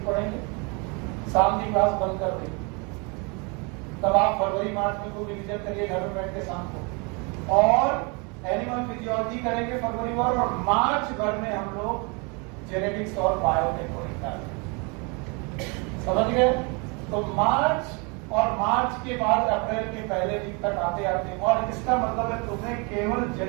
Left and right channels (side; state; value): left; quieter; 31.6 dB